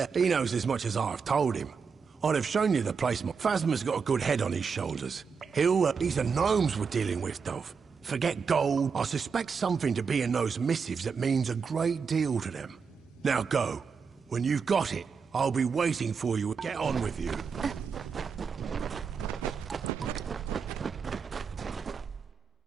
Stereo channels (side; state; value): left; quieter; 5.7 dB